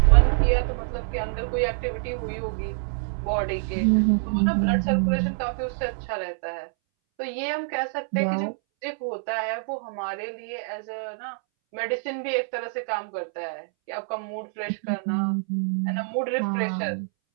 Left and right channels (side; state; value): left; silent; 61 dB below the other